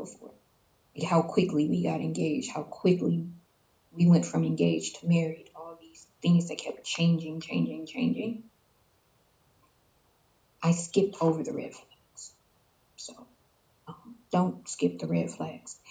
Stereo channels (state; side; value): identical; both; correlation 1.00